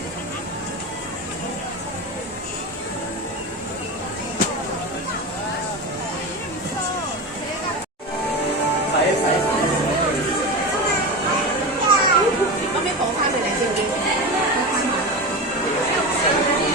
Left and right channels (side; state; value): both; normal; correlation 0.23